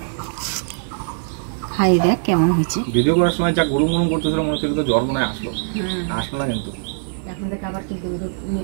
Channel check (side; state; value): left; silent; 58 dB below the other